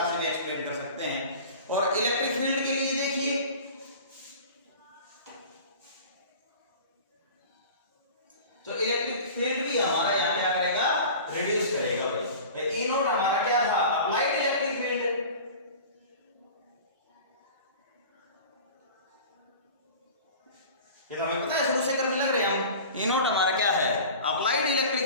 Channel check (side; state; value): both; inverted; correlation -0.39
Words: से भी एक्सप्लेन कर सकते हैं। और इलेक्ट्रिक फील्ड के लिए देखिए, तो इलेक्ट्रिक फील्ड भी हमारा यहां क्या करेगा, रिड्यूस करेगा। भाई ई नोट हमारा क्या था, अप्लाइड इलेक्ट्रिक फील्ड। ये तो हमें पता है, शुरू से करने लग रहे हैं हम। ई नोट हमारा क्या है, अप्लाइड